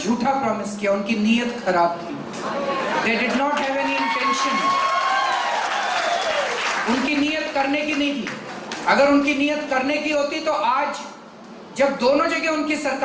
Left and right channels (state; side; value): identical; both; correlation 1.00